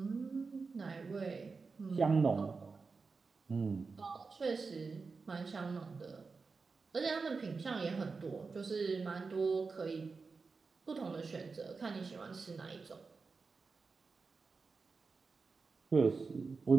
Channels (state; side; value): quieter; left; 4.5 dB